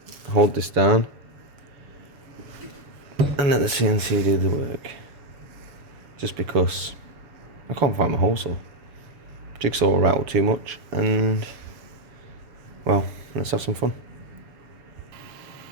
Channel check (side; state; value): left; late; 7.0 ms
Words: hold this down and let the CNC do the work. Just because I can't find my hole saw. Jigsaw will rattle too much, and well, let's have some fun.